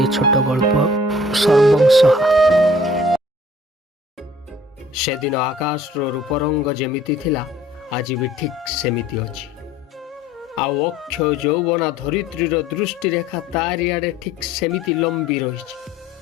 ଛୋଟ ଗଳ୍ପ ସର୍ବଂସହା। ସେଦିନ ଆକାଶର ରୂପରଙ୍ଗ ଯେମିତି ଥିଲା ଆଜି ବି ଠିକ୍ ସେମିତି ଅଛି। ଆଉ ଅକ୍ଷୟ ଯୌବନା ଧରିତ୍ରୀର ଦୃଷ୍ଟିରେଖା ତାରିଆଡ଼େ ଠିକ୍ ସେମିତି ଲମ୍ବି ରହିଛି।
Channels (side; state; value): both; normal; correlation 0.54